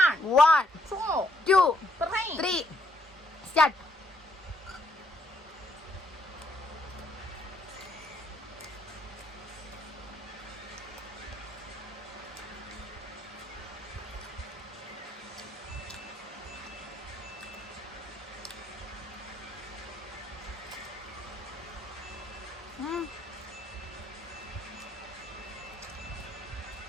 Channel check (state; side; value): normal; both; correlation 0.72